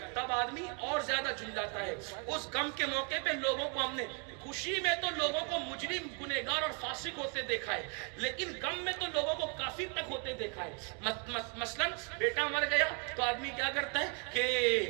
تب آدمی اور زیادہ جھنجھلاتا ہے. اس غم کے موقع پہ لوگوں کو ہم نے، خوشی میں تو لوگوں کو مجرم، گنہگار اور فاسق ہوتے دیکھا ہے، لیکن غم میں تو لوگوں کو کافر تک ہوتے دیکھا ہے. مثلا بیٹا مر گیا تو آدمی کیا کرتا ہے کہ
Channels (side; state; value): left; quieter; 36.6 dB